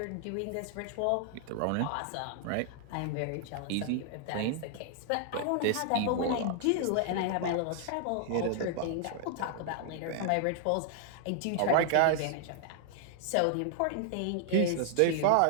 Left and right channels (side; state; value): both; different; correlation 0.00